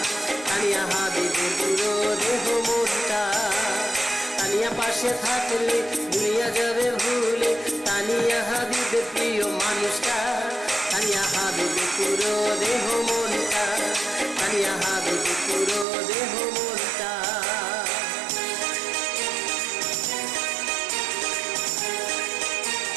তানিয়া হাবিবের পুরো দেহ মনটা। তানিয়া পাশে থাকলে দুনিয়া যাবে ভুলে। তানিয়া হাবিবের প্রিয় মানুষটা, তানিয়া হাবিবের পুরো দেহ মনটা, তানিয়া হাবিবের পুরো দেহ মনটা।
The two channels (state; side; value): drops out; left; at 15.9 s